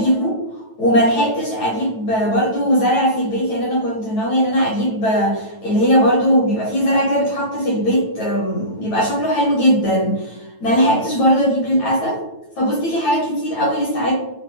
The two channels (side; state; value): right; late; 9.1 ms